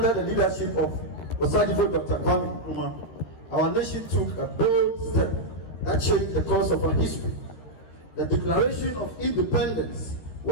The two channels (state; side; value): late; right; 13 ms